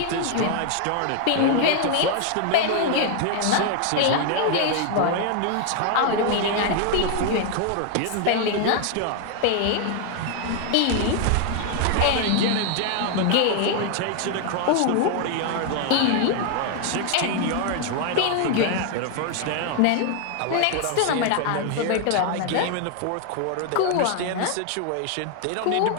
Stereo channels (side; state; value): both; different; correlation 0.00